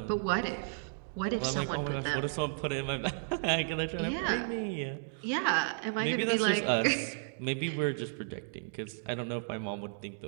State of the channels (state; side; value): silent; left; digital silence